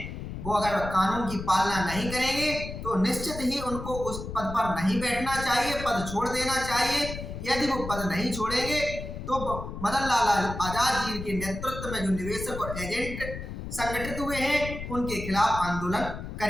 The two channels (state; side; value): noise; left; rumble, 8 dB below the sound